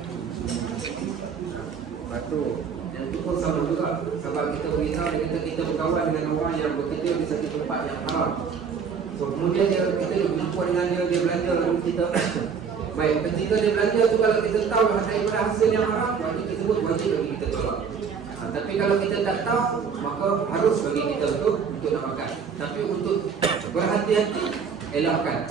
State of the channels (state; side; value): quieter; left; 6.3 dB